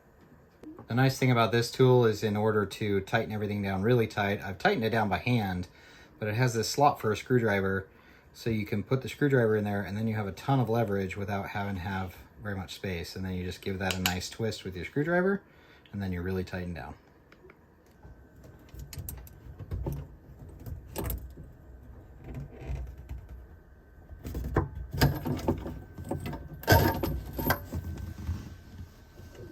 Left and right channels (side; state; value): both; identical; correlation 1.00